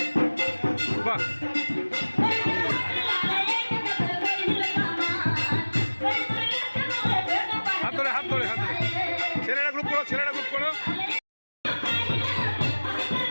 বাহ, হাত ধরে হাত ধরে হাত ধরে, ছেলেরা গ্রুপ করো, ছেলেরা গ্রুপ করো।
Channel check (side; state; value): both; inverted; correlation -1.00